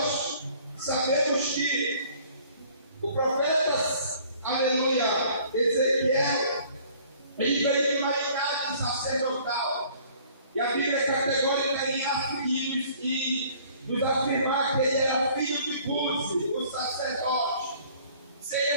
sabemos que o profeta, aleluia, Ezequiel, ele veio de uma linhagem sacerdotal. E a Bíblia é categórica em nos afirmar que ele era filho de Buzi, o sacerdote. Se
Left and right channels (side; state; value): both; inverted; correlation -0.55